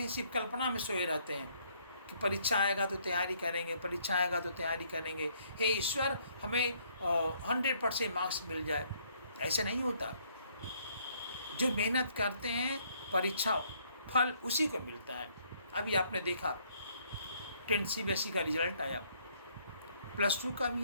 हैं, सिर्फ कल्पना में सोए रहते हैं कि परीक्षा आएगा तो तैयारी करेंगे, परीक्षा आएगा तो तैयारी करेंगे, हे ईश्वर हमें 100% मार्क्स मिल जाए। ऐसे नहीं होता। जो मेहनत करते हैं, परीक्षा फल उसी को मिलता है। अभी आपने देखा 10 CBSE का रिजल्ट आया, +2 का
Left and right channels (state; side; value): inverted; both; correlation -0.66